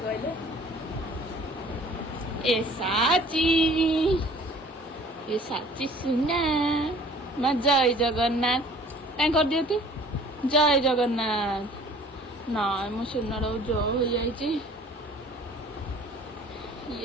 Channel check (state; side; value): normal; both; correlation 0.51